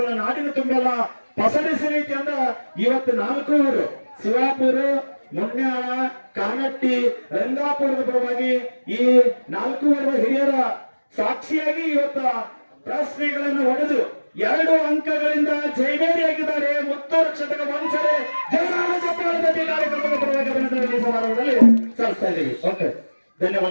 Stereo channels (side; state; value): both; inverted; correlation -1.00